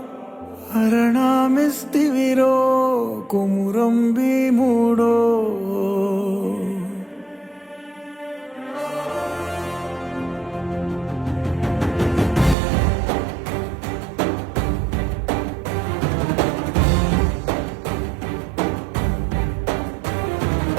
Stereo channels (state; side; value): drops out; left; at 12.6 s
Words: అరణామిస్తివిరో కొమురం భీముడో